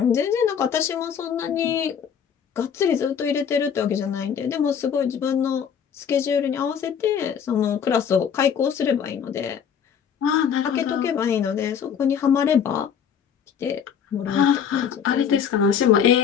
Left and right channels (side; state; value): right; quieter; 7.7 dB